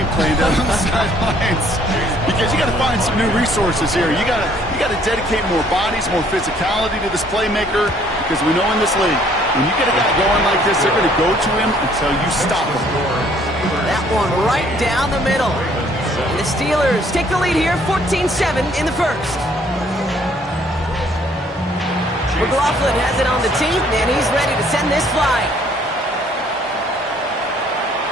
plan down on the sidelines, because you got to find some new resources here. You got to dedicate more bodies, more physicality to this playmaker, because we know in this league, when you get a guy going like this, they're going to go to him until you stop him. That one right down the middle. And the Steelers take the lead here, 14-7 in the 1st. McLaughlin has it on the team, and he's ready to send this flying.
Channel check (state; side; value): normal; both; correlation 0.62